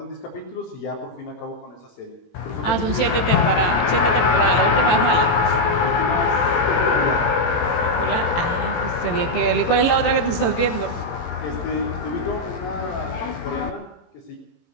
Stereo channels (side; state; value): right; late; 18 ms